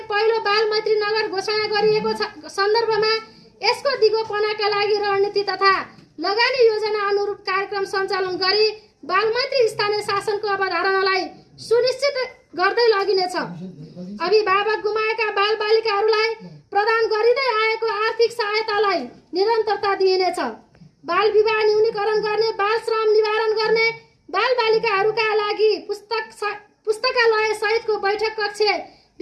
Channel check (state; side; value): identical; both; correlation 1.00